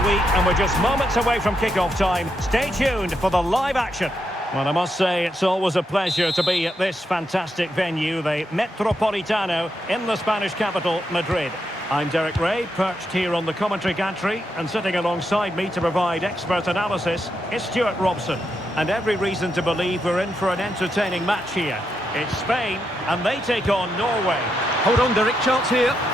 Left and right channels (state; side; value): normal; both; correlation 0.82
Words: and we're just moments away from kick-off time. Stay tuned for the live action. Well, I must say it's always a pleasure to be at this fantastic venue, the Metropolitano, in the Spanish capital, Madrid. I'm Derek Ray, perched here on the commentary gantry, and sitting alongside me to provide expert analysis is Stuart Robson. And every reason to believe we're in for an entertaining match here. It's Spain, and they take on Norway. Hold on, Derek, chance here.